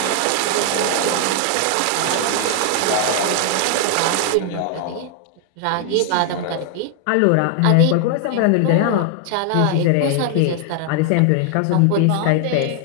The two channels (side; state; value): both; different; correlation 0.00